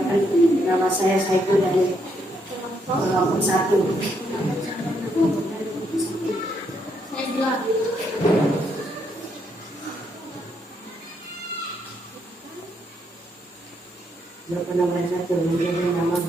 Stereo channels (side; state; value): both; normal; correlation 0.75